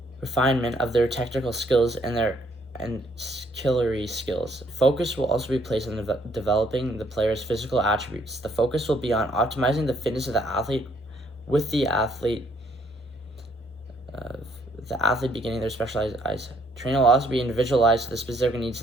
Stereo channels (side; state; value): both; normal; correlation 0.67